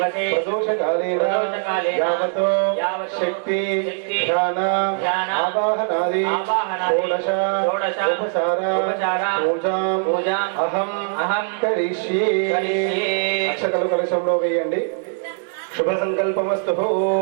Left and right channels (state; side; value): silent; left; 65 dB below the other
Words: ప్రదోషకాలేన యావతో శక్తి ధ్యాన ఆవాహనాది షోడశ ఉపచార పూజాం అహం కరిష్యే. అక్షతలు కలశంలో వేయండి. శుభ సంకల్పమస్తు.